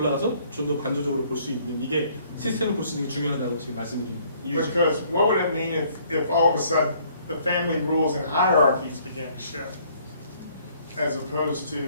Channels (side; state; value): both; inverted; correlation -0.62